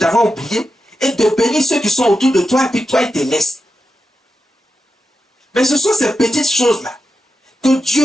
oublié, et de bénir ceux qui sont autour de toi, et puis toi, il te laisse. Mais ce sont ces petites choses-là que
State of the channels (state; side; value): normal; both; correlation 0.89